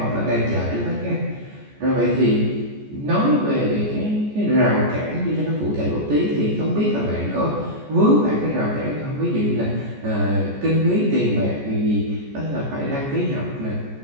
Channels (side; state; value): left; late; 14 ms